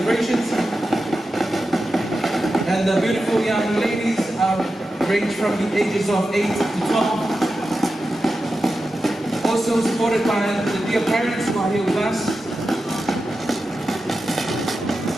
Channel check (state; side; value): normal; both; correlation 0.91